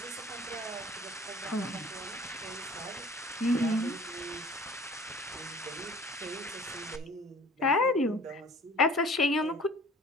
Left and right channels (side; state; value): both; normal; correlation 0.48